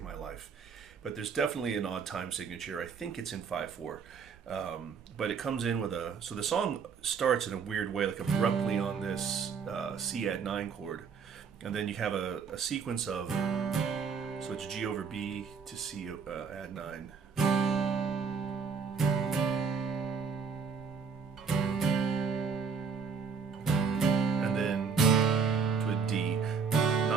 my life. But there's definitely an odd time signature. I think it's in 5/4. But it comes in with a... So the song starts in a weird way, like abruptly on this C add 9 chord. And then you have a sequence of... So it's G over B to C add 9. And then to a D.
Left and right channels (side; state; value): left; quieter; 6.0 dB